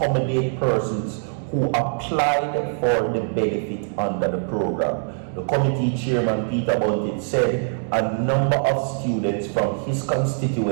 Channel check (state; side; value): silent; left; 64 dB below the other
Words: persons who applied for the benefit under the program. The committee chairman, Peter Bunting, said a number of students from his